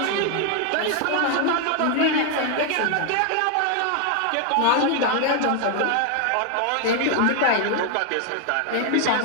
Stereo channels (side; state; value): both; different; correlation 0.01